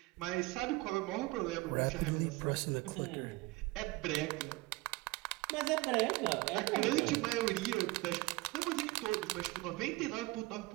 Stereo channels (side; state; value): left; quieter; 22.8 dB